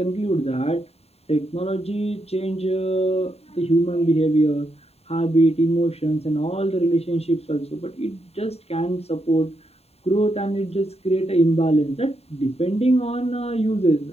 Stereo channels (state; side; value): late; right; 0.30 ms